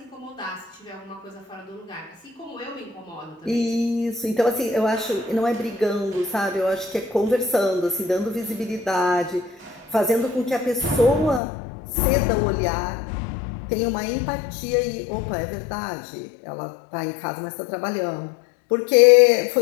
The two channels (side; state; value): right; drops out; at 11.4 s